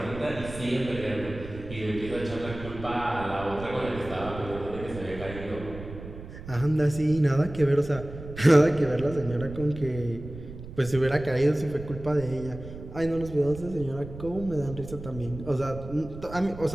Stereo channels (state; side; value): noise; right; rumble, 12 dB below the sound